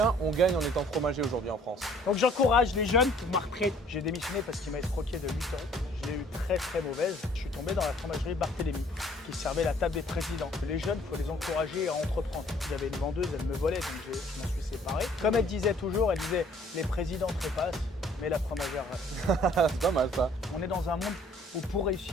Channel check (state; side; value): normal; both; correlation 0.58